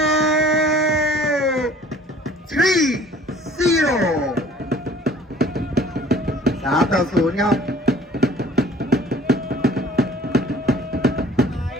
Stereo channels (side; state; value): both; normal; correlation 0.52